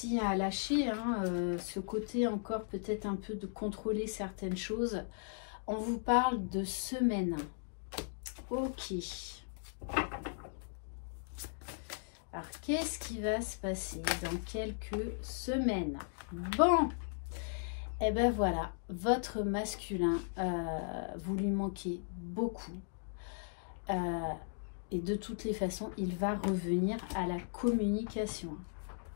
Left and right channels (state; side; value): silent; right; digital silence